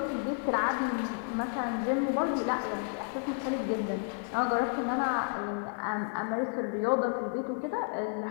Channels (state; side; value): silent; right; 57 dB below the other